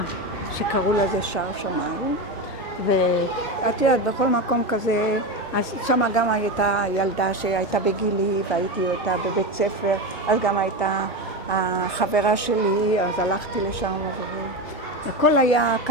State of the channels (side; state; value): both; normal; correlation 0.18